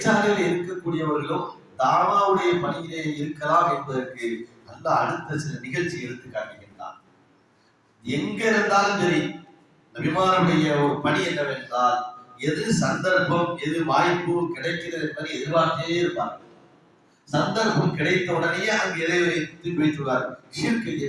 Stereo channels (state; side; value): identical; both; correlation 1.00